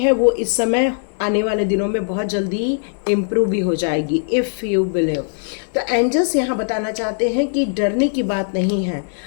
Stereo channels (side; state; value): right; silent; digital silence